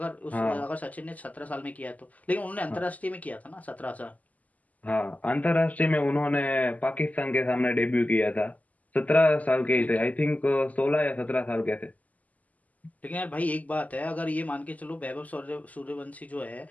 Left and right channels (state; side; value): late; right; 0.076 ms